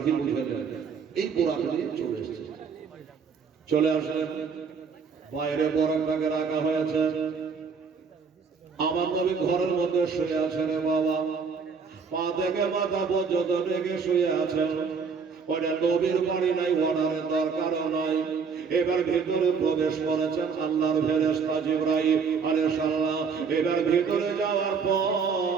উঠে এই বোরাক নিয়ে চলে এসছে। চলে আসলেন, বাইরে বোরাকটাকে রাখা হয়েছে। আমার নবী ঘরের মধ্যে শুয়ে আছেন বাবা, পা থেকে মাথা পর্যন্ত রেখে শুয়ে আছেন। ওটা নবীর বাড়ি নাই, অর্ডারের দরকারও নাই। এবার ভিতরে প্রবেশ করেছেন আল্লাহর ফেরেশতা জিবরাইল আলাইহিস সালাম। এবার ভিতরে যাওয়ার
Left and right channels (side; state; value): left; quieter; 5.7 dB